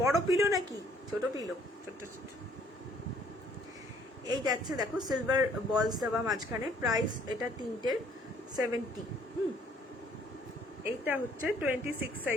বড় পিলো নাকি ছোট পিলো? ছোট ছোট। এই যাচ্ছে দেখো সিলভার বলস দেওয়া মাঝখানে, প্রাইস এটা তিনটের 70। এইটা হচ্ছে 26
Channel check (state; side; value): normal; both; correlation 0.62